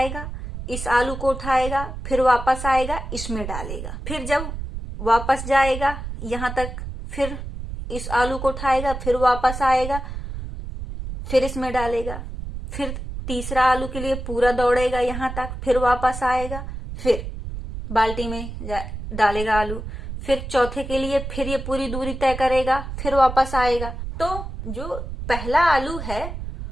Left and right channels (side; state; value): right; noise; rumble, 7 dB below the sound